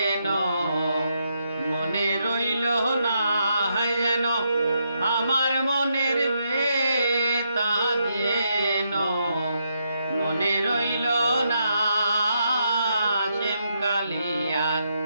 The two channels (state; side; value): inverted; both; correlation -0.79